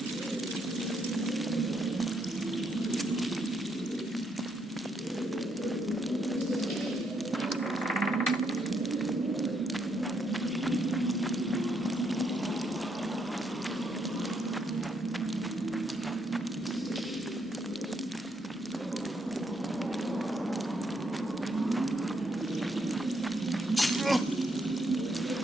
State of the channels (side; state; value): both; normal; correlation 0.75